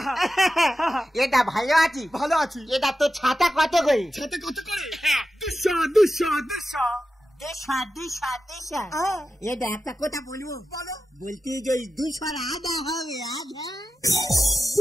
এটা ভালো আছি, ভালো আছি। এটা তো ছাতা কত করে? ছাতা কত করে? 200 200 200 এটা একটা কথা বলবো, বলতে যে 200 আধা হবে, আধা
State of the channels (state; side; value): normal; both; correlation 0.92